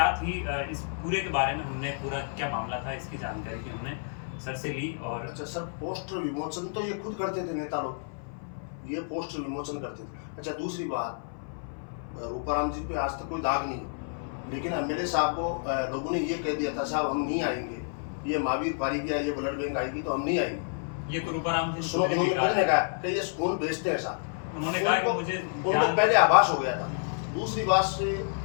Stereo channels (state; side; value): silent; right; 58 dB below the other